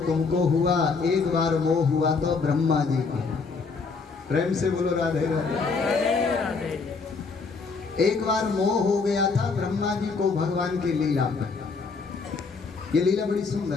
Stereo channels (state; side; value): quieter; right; 4.6 dB